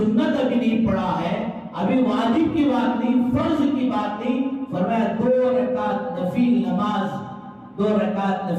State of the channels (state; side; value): identical; both; correlation 1.00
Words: ابھی نہیں پڑھا ہے، ابھی واجب کی بات نہیں، فرض کی بات نہیں، فرمایا 2 رکعت نفل